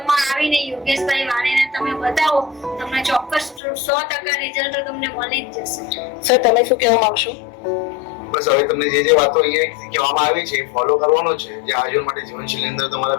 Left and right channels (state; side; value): drops out; right; at 3.6 s